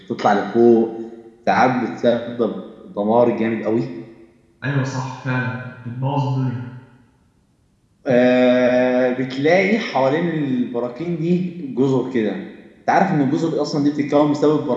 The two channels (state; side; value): identical; both; correlation 1.00